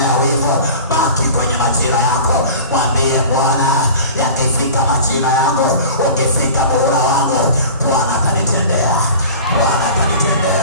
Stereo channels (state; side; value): inverted; both; correlation -0.39